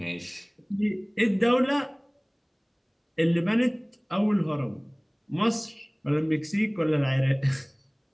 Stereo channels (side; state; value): both; identical; correlation 1.00